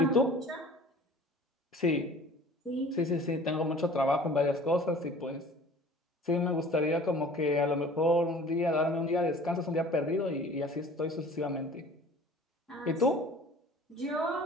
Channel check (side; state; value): both; normal; correlation 0.47